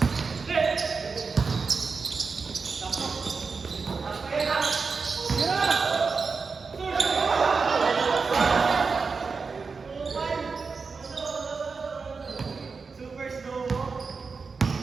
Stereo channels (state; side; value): quieter; left; 4.8 dB